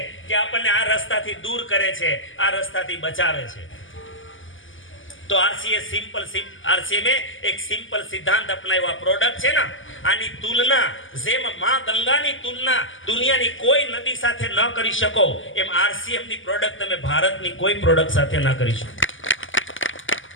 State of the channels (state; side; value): late; right; 0.57 ms